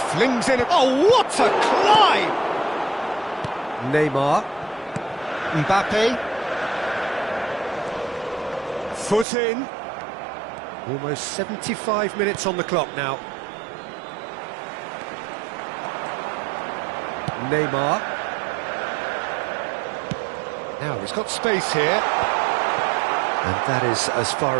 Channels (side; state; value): left; drops out; at 9.2 s